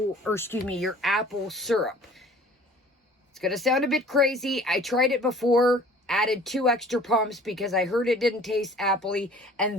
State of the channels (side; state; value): both; normal; correlation 0.49